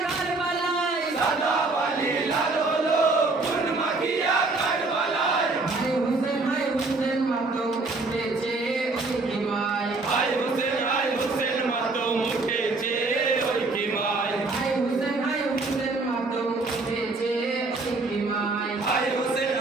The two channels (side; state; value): left; quieter; 3.5 dB